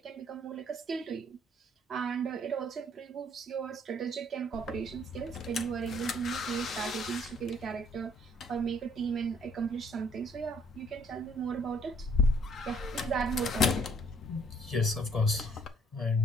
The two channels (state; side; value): normal; both; correlation 0.63